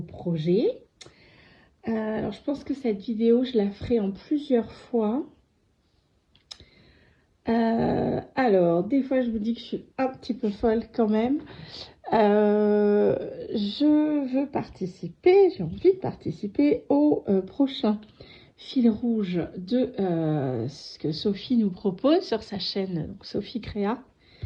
projet. Alors, je pense que cette vidéo, je la ferai en plusieurs fois. Alors, des fois, je vous dis que je suis un petit peu folle quand même. Je veux participer, j'ai envie de participer au prochain fil rouge de ce que Sophie nous propose sur sa chaîne, donc Sophie Créa.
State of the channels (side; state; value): both; identical; correlation 1.00